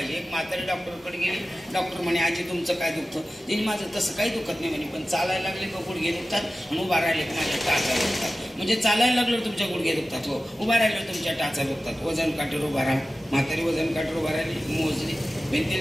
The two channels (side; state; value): both; normal; correlation 0.95